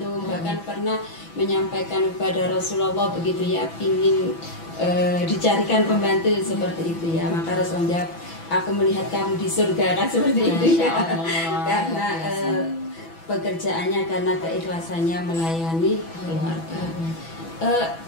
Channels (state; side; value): late; right; 6.1 ms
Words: bahkan pernah menyampaikan kepada Rasulullah begitu ya, ingin dicarikan pembantu seperti itu ya. Maka Rasulullah jawab, aku melihat kamu di surga, kan seperti itu ya. Karena pekerjaannya, karena keikhlasannya melayani keluarga.